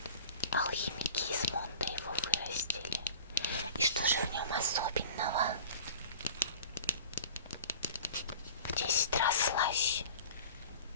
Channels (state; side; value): inverted; both; correlation -0.40